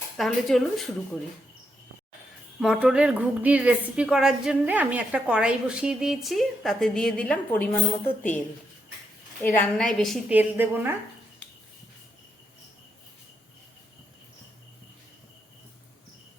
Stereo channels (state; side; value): normal; both; correlation 0.80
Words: তাহলে চলুন শুরু করি। মটরের ঘুগনির রেসিপি করার জন্য আমি একটা কড়াই বসিয়ে দিয়েছি, তাতে দিয়ে দিলাম পরিমাণ মতো তেল। এই রান্নায় বেশি তেল দেব না।